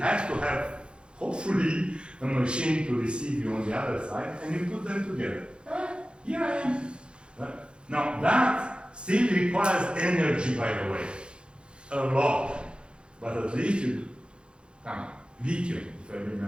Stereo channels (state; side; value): late; left; 0.054 ms